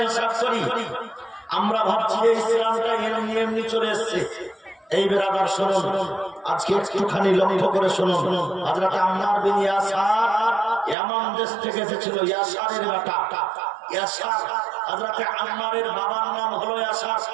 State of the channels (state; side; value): drops out; left; at 11.0 s